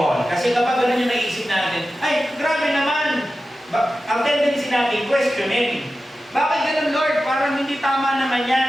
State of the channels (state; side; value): normal; both; correlation 0.93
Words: Kasi kapag ganun yung naisip natin, ay, grabe naman. Ang tendency natin, questioning. Bakit ganun, Lord? Parang hindi tama naman